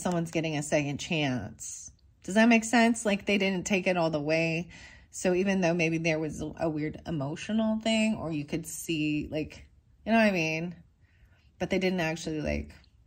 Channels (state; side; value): identical; both; correlation 1.00